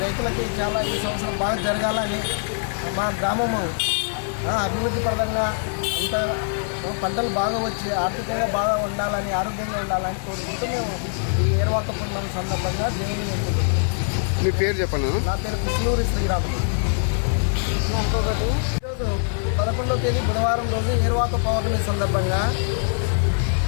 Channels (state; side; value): silent; right; digital silence